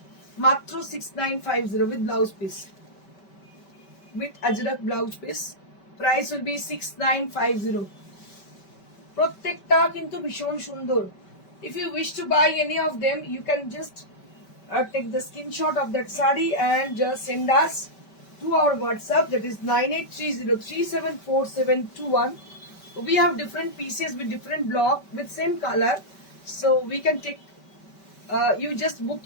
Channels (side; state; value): right; late; 5.2 ms